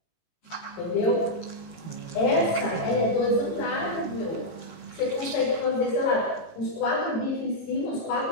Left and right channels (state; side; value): late; right; 18 ms